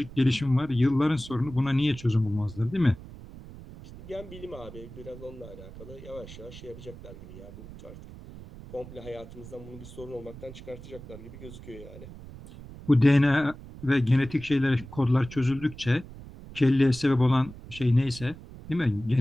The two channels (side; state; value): right; noise; rumble, 15 dB below the sound